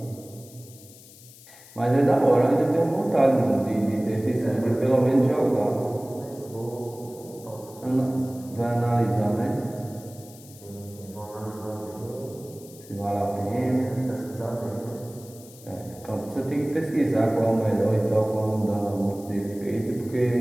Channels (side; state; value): left; noise; hiss, 21 dB below the sound